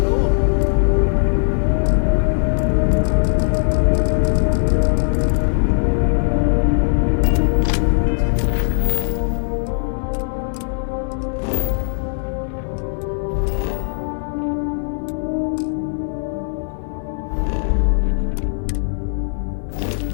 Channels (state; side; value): silent; right; 66 dB below the other